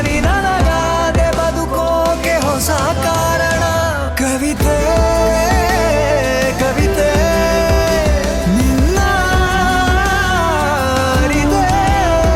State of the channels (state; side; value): identical; both; correlation 1.00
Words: ನೀ ನನಗಾದೆ ಬದುಕೋಕೆ ಹೊಸ ಕಾರಣ ಕವಿತೆ ಕವಿತೆ ನಿನ್ನ ಅರಿತೆ